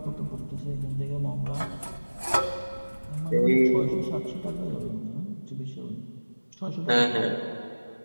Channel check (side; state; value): both; inverted; correlation -1.00